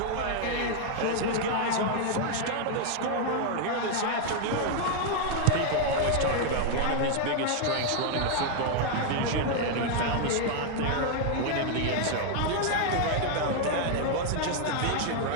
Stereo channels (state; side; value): different; both; correlation 0.00